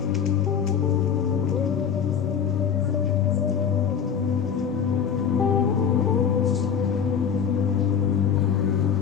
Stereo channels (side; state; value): right; quieter; 7.6 dB